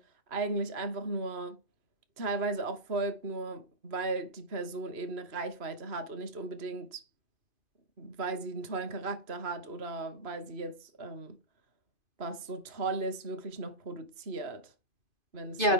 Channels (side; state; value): left; late; 2.9 ms